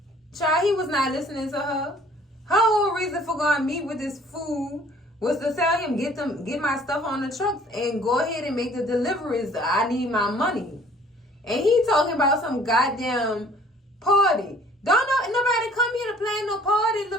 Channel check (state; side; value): normal; both; correlation 0.54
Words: child, he was not listening to her. Her whole reason for going to meet with this fool was to tell him, get my stuff on the trucks and go ahead and make the deliveries. I need my money. And he talking about some goddamn party. Don't know nobody come here to plan no party,